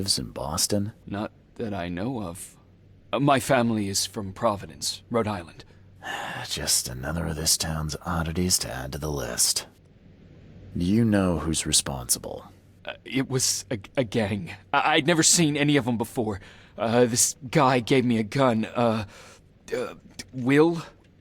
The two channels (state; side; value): identical; both; correlation 1.00